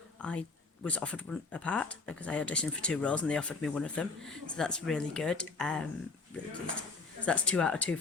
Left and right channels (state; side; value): quieter; right; 4.1 dB